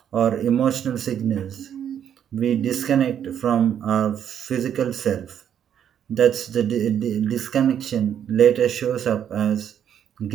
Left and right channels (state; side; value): quieter; left; 9.2 dB